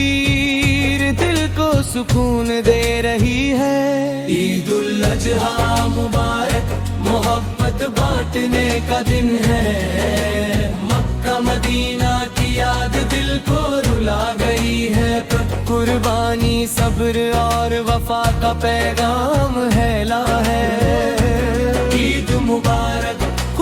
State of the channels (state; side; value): identical; both; correlation 1.00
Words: دل کو سکون دے رہی ہے، عید الاضحیٰ مبارک محبت بانٹنے کا دن ہے، مکہ مدینہ کی یاد دل کو رلا گئی ہے، قربانی صبر اور وفا کا پیغام ہے لا ہے، عید مبارک